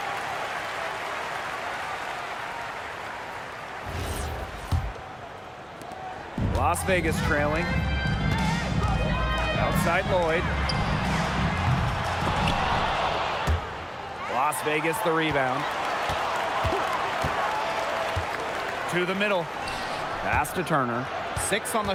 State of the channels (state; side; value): identical; both; correlation 1.00